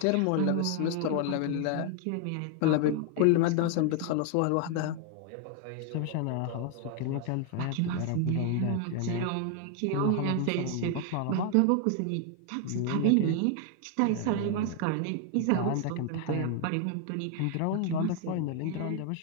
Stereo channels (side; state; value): both; different; correlation 0.00